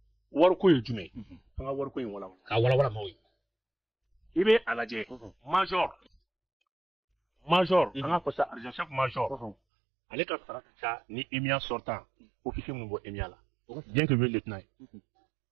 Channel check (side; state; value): left; drops out; at 9.6 s